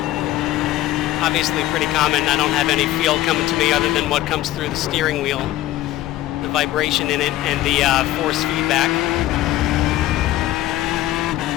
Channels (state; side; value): quieter; right; 14.9 dB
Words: Obviously pretty common. I don't have any feel coming to me other than what comes through the steering wheel, the vibration in it, and the force feedback,